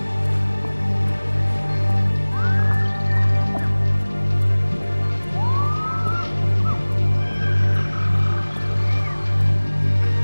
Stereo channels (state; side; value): inverted; both; correlation -1.00